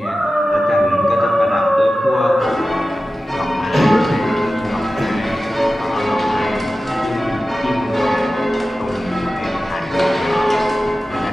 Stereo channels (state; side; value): normal; both; correlation 0.94